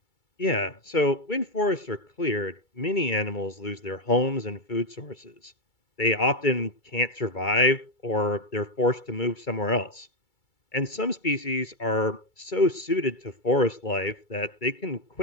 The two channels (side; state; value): right; late; 2.3 ms